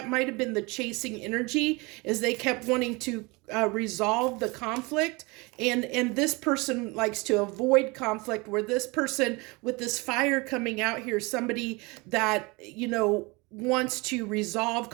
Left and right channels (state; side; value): quieter; left; 26.0 dB